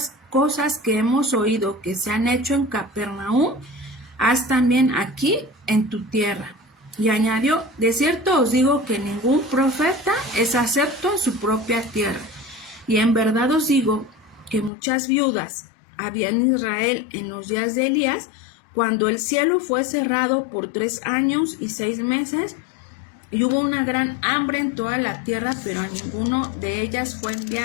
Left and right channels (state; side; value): drops out; right; at 14.7 s